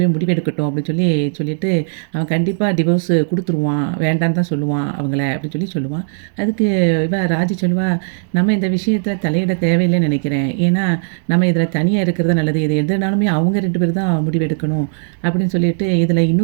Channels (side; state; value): left; silent; digital silence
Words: முடிவெடுக்கட்டும்" அப்படின்னு சொல்லிட்டு, "அவன் கண்டிப்பா டிவோர்ஸ் குடுத்துருவான். வேண்டான்னு தான் சொல்லுவான் அவங்கள" அப்படின்னு சொல்லுவான். அதுக்கு ராஜி சொல்லுவா, "நம்ம இந்த விஷயத்தில தலையிட தேவையில்லைன்னு நினைக்கிறேன். ஏன்னா, நம்ம இதில தனியா இருக்கிறது தான் நல்லது. இது எதுனாலுமே அவங்க 2 பேர் தான் முடிவெடுக்கணும்" அப்படின்னு சொல்லிட்டு, "இதில